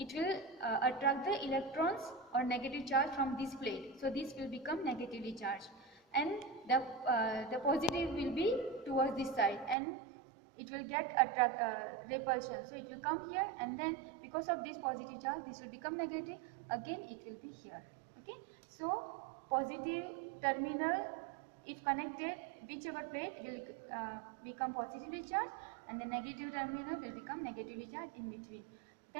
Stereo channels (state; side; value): drops out; left; at 9.8 s